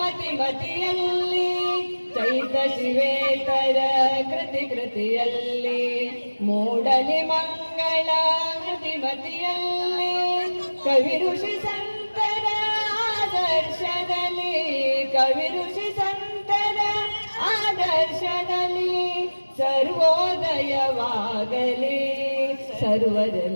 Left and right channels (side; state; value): both; inverted; correlation -1.00